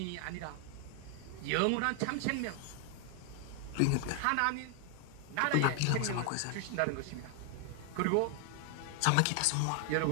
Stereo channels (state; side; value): different; both; correlation 0.00